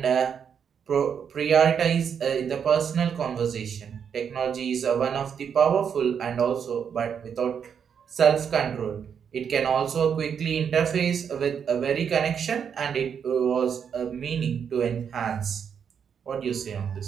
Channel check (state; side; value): quieter; left; 7.4 dB